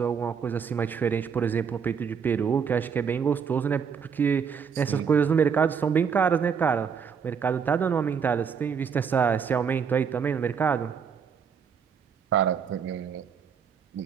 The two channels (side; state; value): left; quieter; 6.7 dB